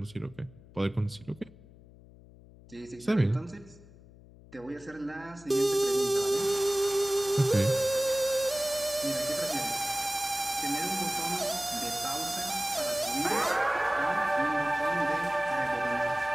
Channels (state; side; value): noise; left; hum, 22 dB below the sound